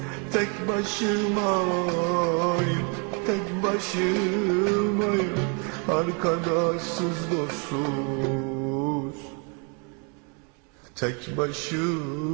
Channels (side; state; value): left; quieter; 35.9 dB